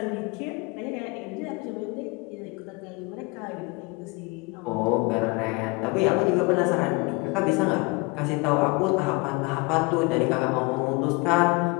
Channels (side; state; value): right; quieter; 27.2 dB